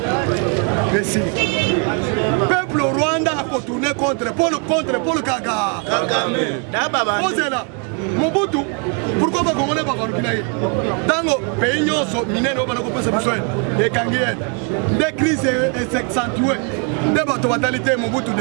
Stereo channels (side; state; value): left; quieter; 37.7 dB